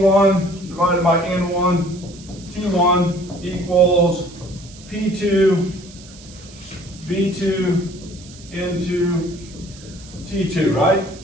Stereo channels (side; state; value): right; noise; hiss, 20 dB below the sound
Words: divided by N1 T1 equals P2 V2 into T2, right?